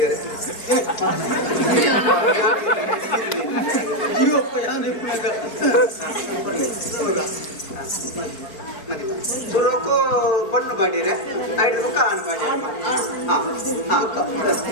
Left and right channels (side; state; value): right; late; 4.6 ms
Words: ಸುರೋಕು ಪಣ್ಣು ಬಾಡಿರೆ ಐದು ಕಾನ್ ಬಾಡಿ